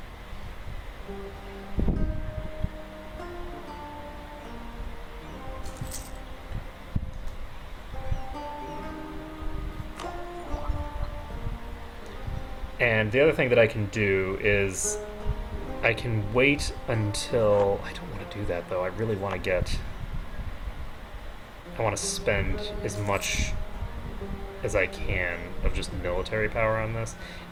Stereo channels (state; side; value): identical; both; correlation 1.00